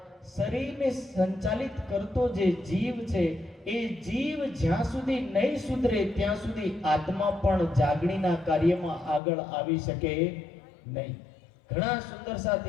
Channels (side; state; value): right; drops out; at 9.2 s